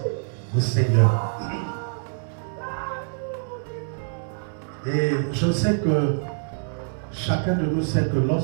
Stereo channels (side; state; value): left; silent; digital silence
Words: au Seigneur. Et je sais que chacun de nous sait que